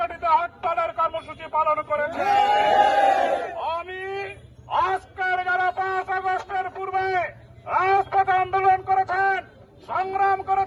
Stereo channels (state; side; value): identical; both; correlation 1.00